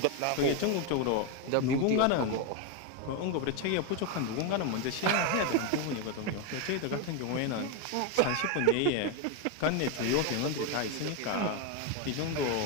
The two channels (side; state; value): both; different; correlation 0.02